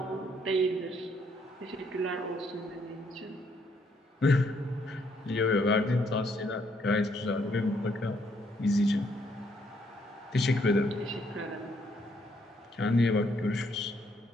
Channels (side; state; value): both; normal; correlation 0.70